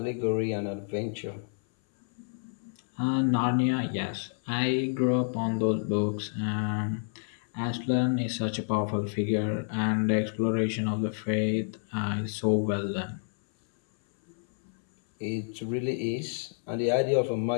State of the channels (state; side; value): silent; right; 58 dB below the other